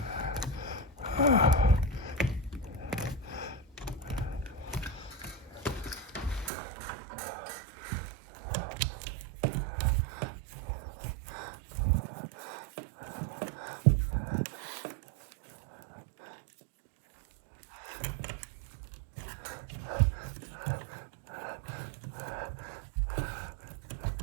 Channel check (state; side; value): drops out; left; at 6.5 s